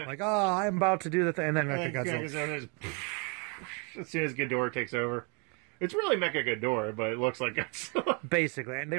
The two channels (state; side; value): quieter; left; 34.3 dB